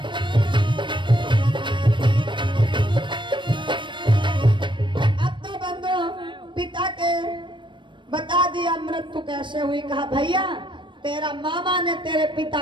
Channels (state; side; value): late; left; 0.23 ms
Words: अब तो बंदो पिता के बता दिया मृत्यु कैसे हुई। कहा भैया तेरा मामा ने तेरे